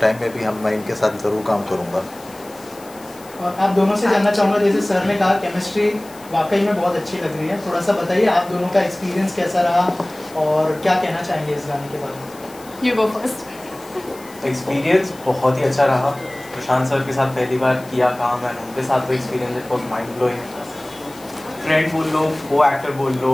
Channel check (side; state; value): left; noise; hiss, 22 dB below the sound